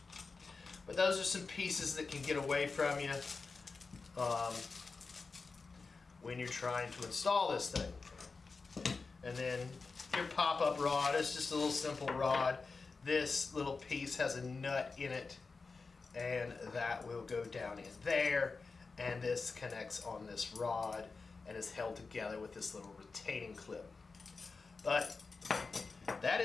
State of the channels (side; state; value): right; quieter; 4.3 dB